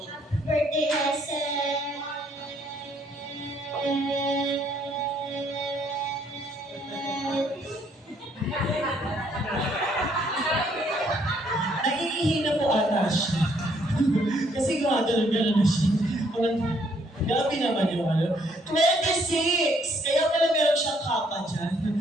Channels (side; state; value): both; normal; correlation 0.67